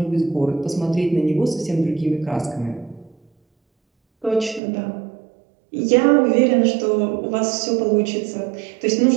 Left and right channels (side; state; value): left; drops out; at 4.6 s